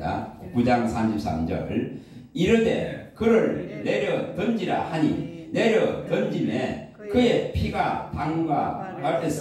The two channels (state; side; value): identical; both; correlation 1.00